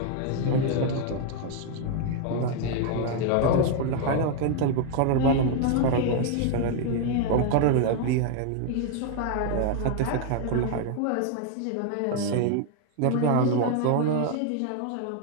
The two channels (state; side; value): different; both; correlation 0.00